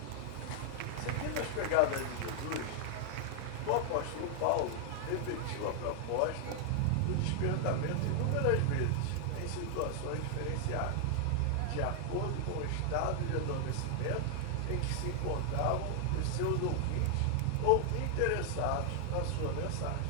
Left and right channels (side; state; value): both; different; correlation 0.00